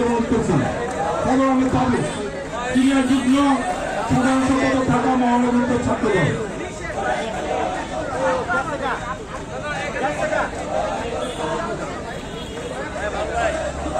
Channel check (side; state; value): both; identical; correlation 1.00